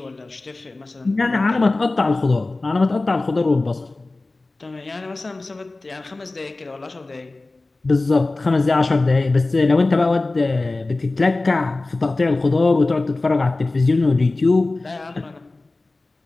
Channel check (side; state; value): right; quieter; 3.2 dB